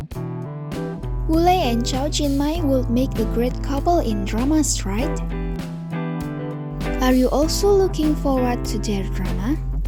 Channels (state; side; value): identical; both; correlation 1.00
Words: Woolley and Cho Jin-mei would make a great couple in dramas, right? Are you also looking forward to their drama?